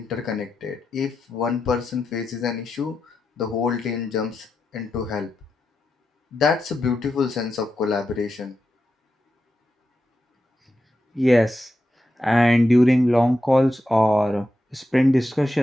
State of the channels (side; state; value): both; normal; correlation 0.88